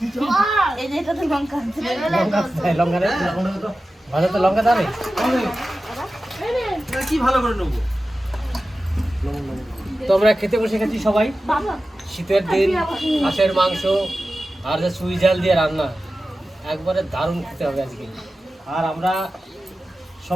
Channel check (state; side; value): normal; both; correlation 0.94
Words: এই যে এটা তো লঙ্কা আছে। লঙ্কা দেয়, লঙ্কা দেয়। ভাজা তো লঙ্কা দেবে। তো আমরা খেতে বসে গেছি সবাই। শীতের দিন হাঁসের মাংস আর যে সুই জাল দিয়ে রান্না, একবারে দারুণ খেতে হবে আজকে। আর আমরা